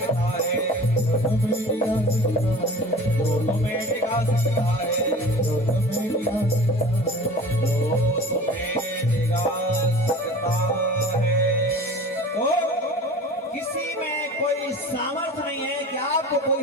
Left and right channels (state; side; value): normal; both; correlation 0.40